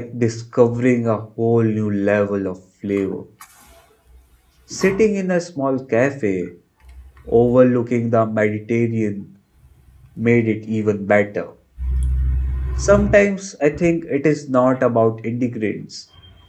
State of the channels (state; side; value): identical; both; correlation 1.00